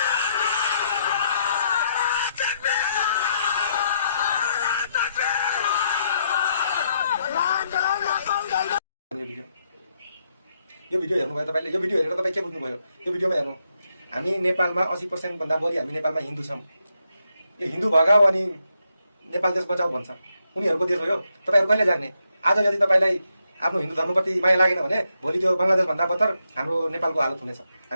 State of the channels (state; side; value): inverted; both; correlation -0.79